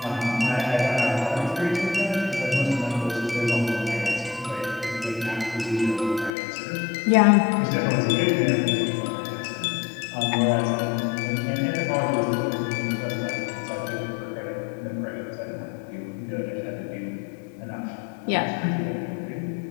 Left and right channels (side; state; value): right; drops out; at 6.3 s